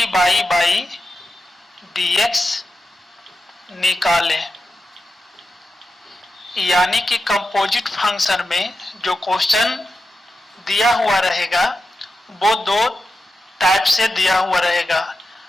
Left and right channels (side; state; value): both; normal; correlation 0.90